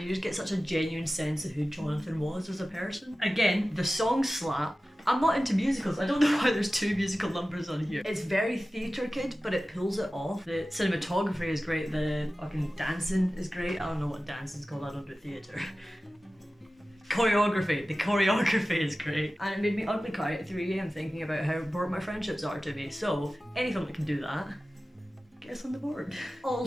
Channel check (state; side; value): normal; both; correlation 0.96